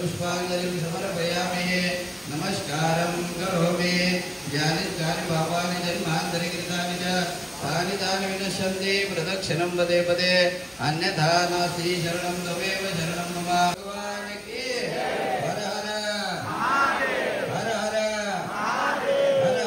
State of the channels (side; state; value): both; identical; correlation 1.00